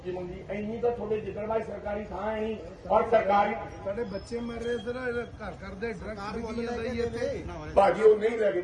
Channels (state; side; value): identical; both; correlation 1.00